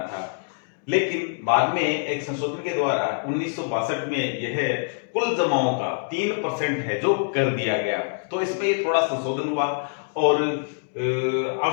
था। लेकिन बाद में एक संशोधन के द्वारा 1962 में यह कुल जमाओं का 3% है जो कर दिया गया। तो इसमें थोड़ा संशोधन हुआ और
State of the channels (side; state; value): right; silent; digital silence